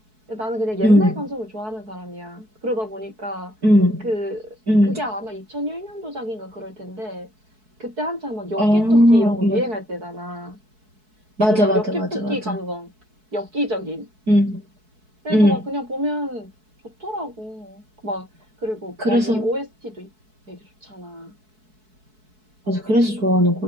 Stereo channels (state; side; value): late; left; 4.6 ms